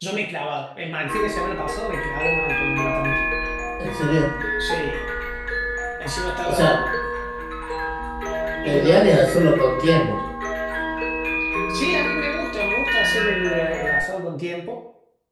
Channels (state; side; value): identical; both; correlation 1.00